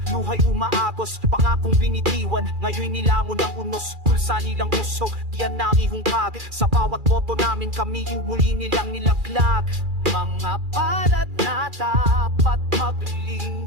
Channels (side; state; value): left; late; 2.4 ms